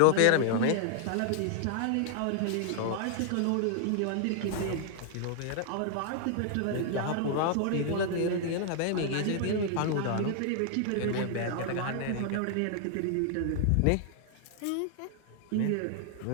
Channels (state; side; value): different; both; correlation 0.00